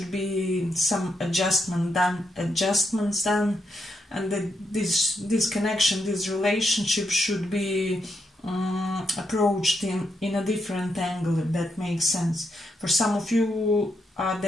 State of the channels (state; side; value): normal; both; correlation 0.81